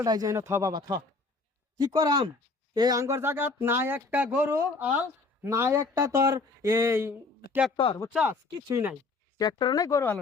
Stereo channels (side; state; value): right; quieter; 3.8 dB